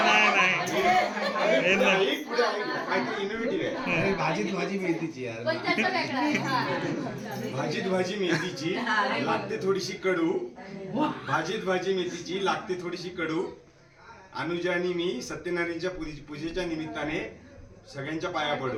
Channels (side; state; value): both; identical; correlation 1.00